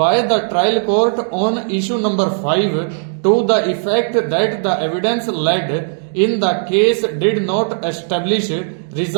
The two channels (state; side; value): silent; left; digital silence